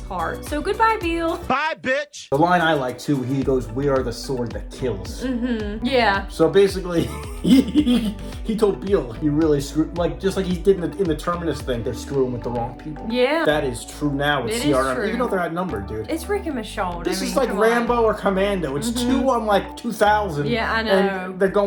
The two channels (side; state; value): both; identical; correlation 1.00